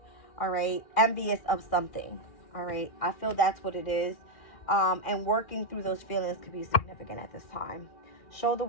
all right? Envious of something, all right? I feel that's what it is. And working through those feelings could be significant at this time. Show the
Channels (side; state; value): right; late; 2.3 ms